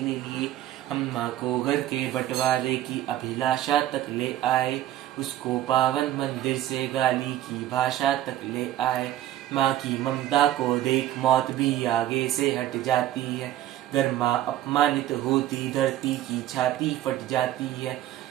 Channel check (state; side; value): quieter; left; 13.2 dB